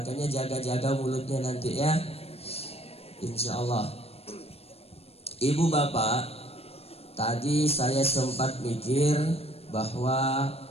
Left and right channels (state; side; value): late; right; 0.29 ms